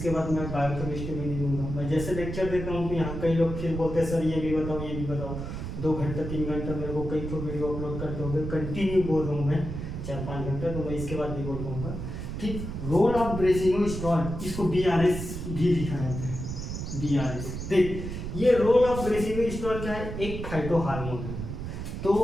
बाद मैं बायोकेमिस्ट्री में नहीं दूंगा। मैं जैसे लेक्चर देता हूँ तो यहाँ कई लोग फिर बोलते हैं सर ये भी बताओ ये भी बताओ। 2 घंटा 3 घंटा मेरे को कई तो वीडियो अपलोड करते होंगे, कंटिन्यू बोल रहा हूँ मैं 4-5 घंटा, तो मैं इसके बाद भी बोल पाऊँगा। ठीक, रोल ऑफ ब्रेसिनो स्टॉल, इसको BRS भी लिखा जाता है, BRS। देख ये रोल ऑफ ब्रेसिनो स्टॉल क्या है, एक फाइटो हार्मोन है।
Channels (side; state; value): right; noise; rumble, 6 dB below the sound